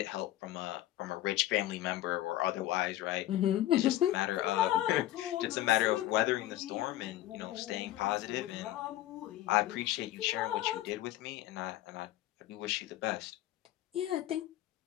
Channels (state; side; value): quieter; right; 14.5 dB